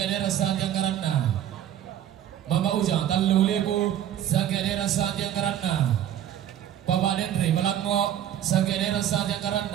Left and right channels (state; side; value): quieter; left; 10.9 dB